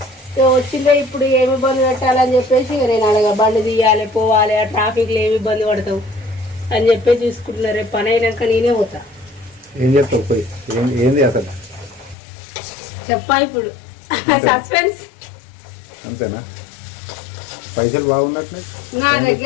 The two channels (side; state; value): right; drops out; at 12.2 s